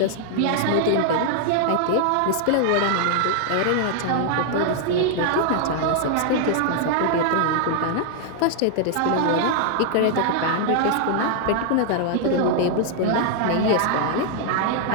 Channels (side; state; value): both; different; correlation 0.00